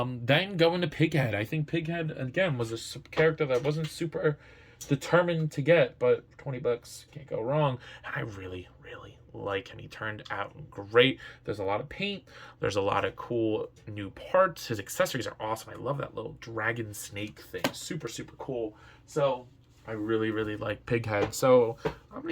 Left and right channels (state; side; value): identical; both; correlation 1.00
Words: Then going to Pighead. I think Pighead, again, was a character that wasn't super determined to get, but for 20 bucks, can't go wrong. And I really, really like him. He turned out great. There's a lot of paint. There's a lot of cool new parts. His accessories are awesome. I love that little dragon snake thing. Super, super cool. So I really, really like Pighead. So I'm going